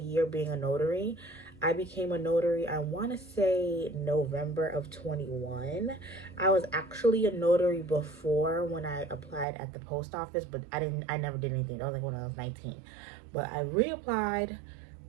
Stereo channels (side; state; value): left; drops out; at 9.5 s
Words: being a notary. I became a notary, I want to say November of 21. I was actually a notary before when I applied at the post office, but I never did anything. That was like when I was 19. But I reapplied